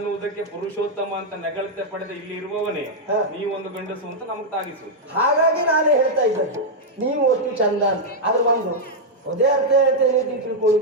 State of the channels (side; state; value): both; normal; correlation -0.03